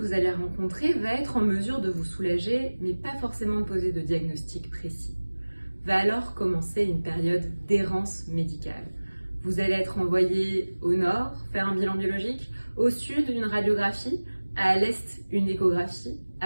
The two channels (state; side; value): inverted; both; correlation -1.00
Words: allez rencontrer va être en mesure de vous soulager, mais pas forcément de poser de diagnostic précis. Va alors commencer une période d'errance médicale. Vous allez être envoyé au nord, faire un bilan biologique, au sud, une radiographie, à l'est, une échographie,